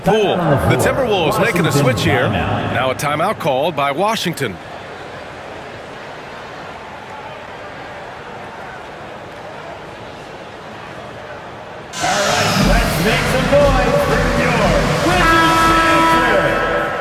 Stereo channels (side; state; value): both; identical; correlation 1.00